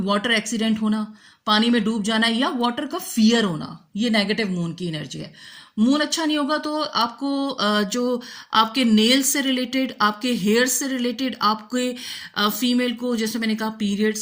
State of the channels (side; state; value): both; identical; correlation 1.00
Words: वाटर एक्सीडेंट होना, पानी में डूब जाना, या वाटर का फियर होना, ये नेगेटिव मून की एनर्जी है। मून अच्छा नहीं होगा तो आपको जो आपके नेल्स से रिलेटेड, आपके हेयर से रिलेटेड, आपके फीमेल को जैसे मैंने कहा पीरियड